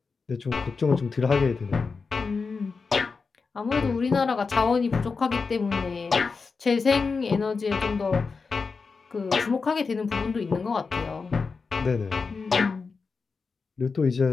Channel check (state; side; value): quieter; right; 4.7 dB